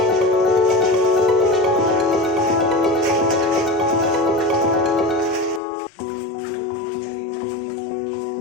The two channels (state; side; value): drops out; right; at 5.6 s